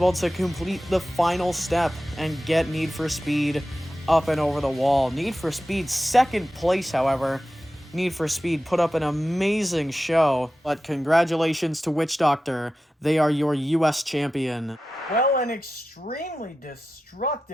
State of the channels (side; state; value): both; normal; correlation 0.93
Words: to complete the final step and get Need for Speed up and over the wall. Need for Speed second place, however. Need for Speed put up an amazing show, but congratulations to Witch Doctor. They are your US champion. Well, an extremely